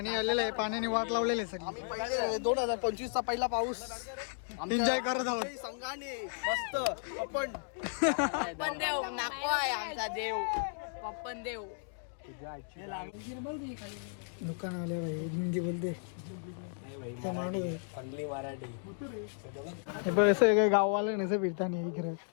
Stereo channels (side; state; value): right; silent; digital silence